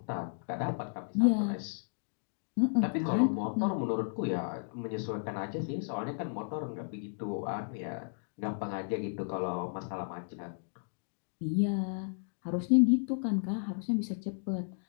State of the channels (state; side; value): silent; right; digital silence